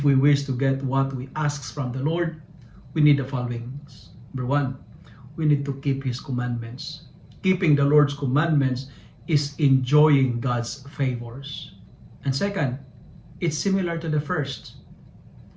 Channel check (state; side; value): identical; both; correlation 1.00